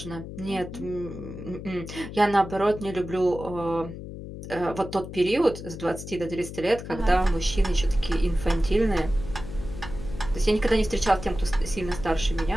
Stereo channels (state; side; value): noise; left; hum, 10 dB below the sound